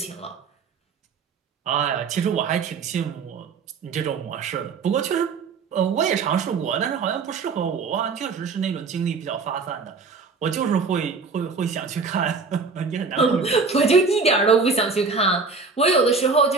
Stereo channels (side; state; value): left; quieter; 4.7 dB